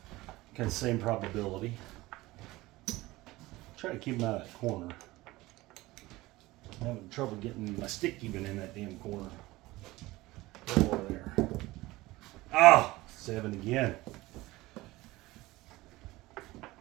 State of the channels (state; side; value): quieter; left; 19.3 dB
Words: Kind of same probability. Try to keep him out of that corner. I'm having trouble getting my stick even in that damn corner. Over there. Oh, 7 again.